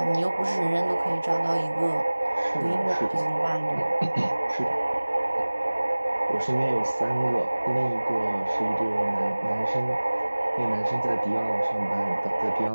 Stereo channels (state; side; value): inverted; both; correlation -1.00